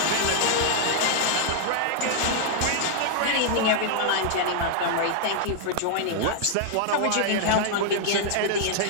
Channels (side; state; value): both; different; correlation -0.01